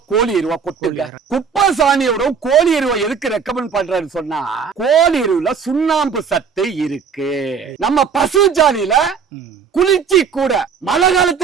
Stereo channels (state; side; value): quieter; left; 6.3 dB